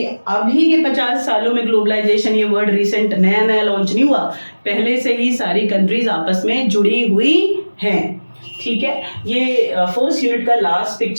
अभी के 50 सालों में ग्लोबलाइजेशन, ये वर्ड रिसेंट नया नया लॉन्च नहीं हुआ, पहले से ही सारी कंट्रीज आपस में जुड़ी हुई हैं। ठीक है, ये फर्स्ट यूनिट का लास्ट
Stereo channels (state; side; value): inverted; both; correlation -1.00